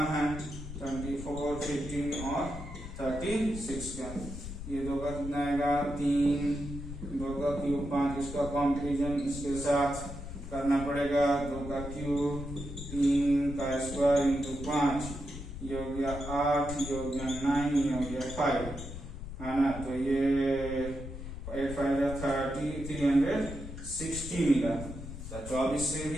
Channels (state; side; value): noise; left; rumble, 9 dB below the sound